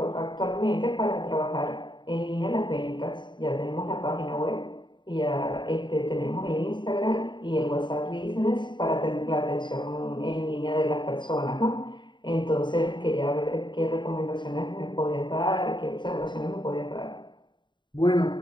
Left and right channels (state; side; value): late; right; 0.22 ms